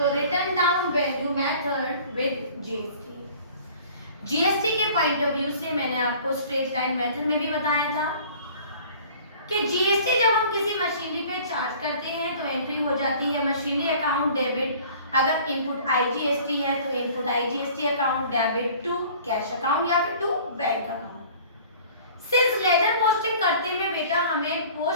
written down value method with GST. GST के पॉइंट ऑफ व्यू से मैंने आपको स्ट्रेट लाइन मेथड में भी बताया था कि जीएसटी जब हम किसी मशीनरी पे चार्ज करते हैं तो एंट्री हो जाती है मशीनरी अकाउंट डेबिट। अगर इनपुट आईजीएसटी है तो input IGST account debit to cash account या फिर to bank account. Since ledger posting करते में बेटा हमें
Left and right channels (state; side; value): inverted; both; correlation -0.48